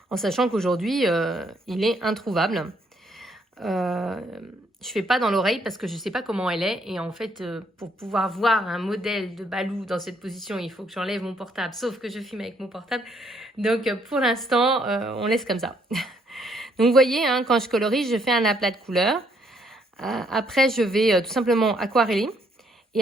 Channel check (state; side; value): normal; both; correlation 0.69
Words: En sachant qu'aujourd'hui, il est introuvable. Je fais pas dans l'oreille parce que je sais pas comment elle est. Et en fait, pour pouvoir voir un modèle de Balou dans cette position, il faut que j'enlève mon portable. Sauf que je filme avec mon portable. Donc, pour l'instant, on laisse comme ça. Donc, vous voyez, hein, quand je colorie, je fais un aplat de couleurs. Après, je vais tout simplement aquareller.